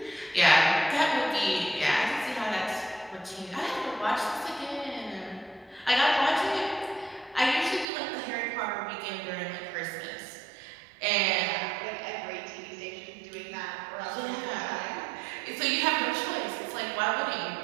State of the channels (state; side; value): drops out; left; at 7.9 s